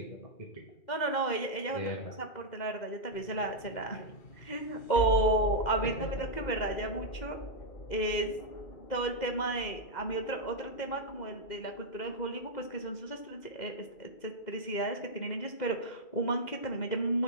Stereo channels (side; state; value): right; late; 2.1 ms